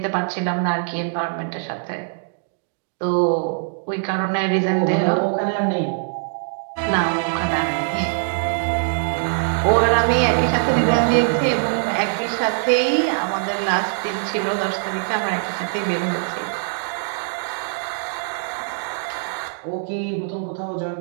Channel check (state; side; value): silent; left; digital silence